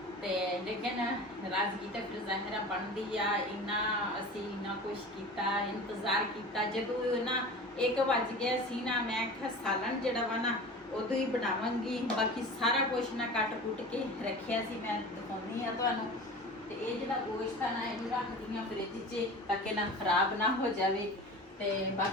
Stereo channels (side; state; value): both; normal; correlation 0.36